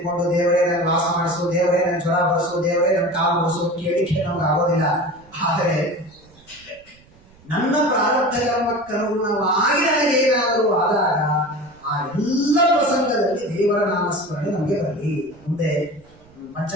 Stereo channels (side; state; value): right; noise; rumble, 27 dB below the sound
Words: ದೇವರೇ ನನ್ಗೆ ವಾಸ ಮಾಡಿಸು, ದೇವರೇ ನನ್ ಜ್ವರ ಬಡಿಸು, ದೇವರೇ ನನ್ ಕಾಲು ಬಡಿಸು ಕೇಳಿಕೆ ನಮ್ಗೆ ಆಗೋದಿಲ್ಲ. ಆದರೆ ನನ್ನ ಪ್ರಾರಬ್ಧ ಕರ್ಮಕ್ಕನುಗುಣವಾಗಿ ನನಗೆ ಏನಾದರೂ ಆದಾಗ ಆ ಎಲ್ಲ ಪ್ರಸಂಗದಲ್ಲಿ ದೇವರ ನಾಮಸ್ಮರಣೆ ನಮಗೆ ಬರಲಿ. ಮುಂದೆ